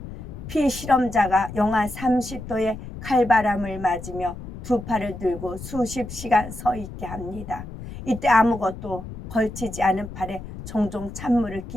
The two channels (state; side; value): noise; left; rumble, 11 dB below the sound